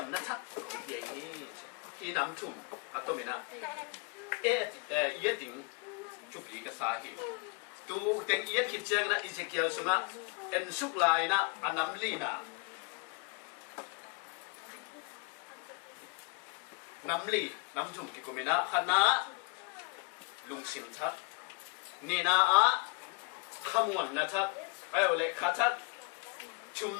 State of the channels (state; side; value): quieter; right; 32.5 dB